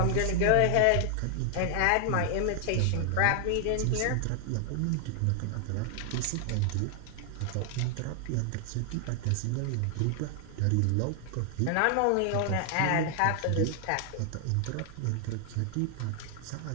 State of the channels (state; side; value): different; both; correlation 0.00